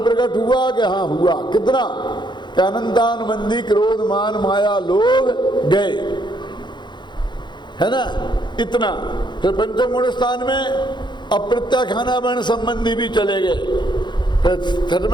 प्रकट हुआ कि हाँ हुआ। कितना? कि अनंतानुबंधी क्रोध मान माया लोभ गए, है ना, इतना। फिर पंचम गुण स्थान में अप्रत्याख्याना वर्ण संबंधी भी चले गए। फिर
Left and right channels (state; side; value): late; right; 0.22 ms